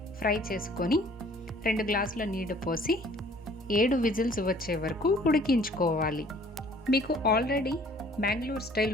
ఫ్రై చేసుకొని 2 గ్లాసుల నీళ్లు పోసి 7 విజిల్స్ వచ్చే వరకు ఉడికించుకోవాలి. మీకు ఆల్రెడీ బెంగళూరు స్టైల్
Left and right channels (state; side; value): normal; both; correlation 0.55